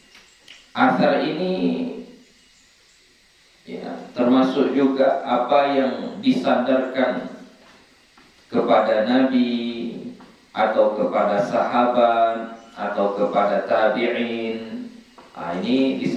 Asar ini ya, termasuk juga apa yang disandarkan kepada Nabi atau kepada sahabat atau kepada tabi'in. Ini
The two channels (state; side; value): identical; both; correlation 1.00